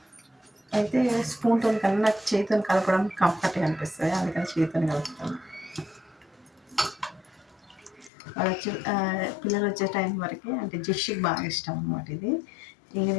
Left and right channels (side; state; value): right; drops out; at 8.1 s